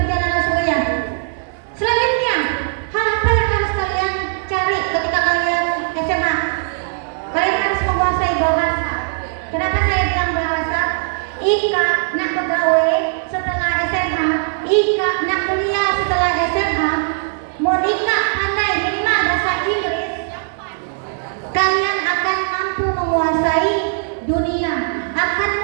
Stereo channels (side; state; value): left; silent; digital silence